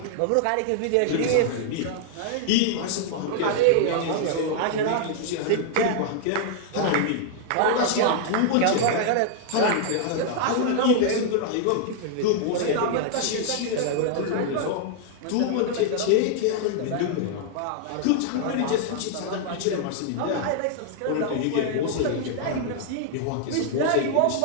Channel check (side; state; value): both; different; correlation -0.01